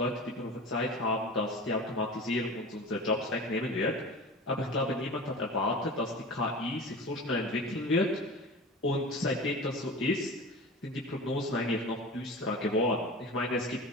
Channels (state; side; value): normal; both; correlation 0.33